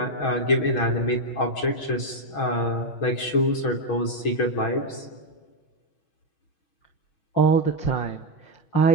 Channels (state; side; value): late; right; 6.3 ms